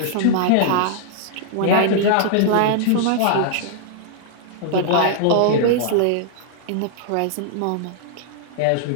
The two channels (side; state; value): both; different; correlation -0.01